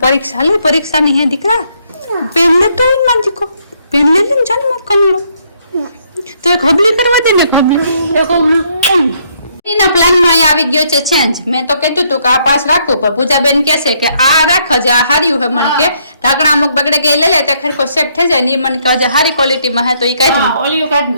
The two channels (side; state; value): both; inverted; correlation -0.71